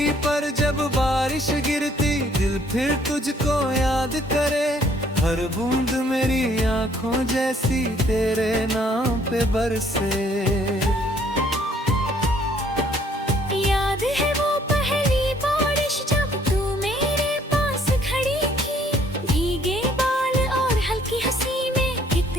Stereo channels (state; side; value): normal; both; correlation 0.63